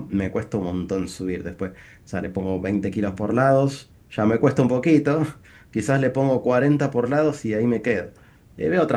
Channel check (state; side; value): identical; both; correlation 1.00